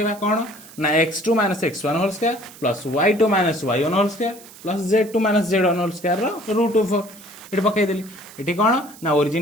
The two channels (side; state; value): right; noise; hiss, 20 dB below the sound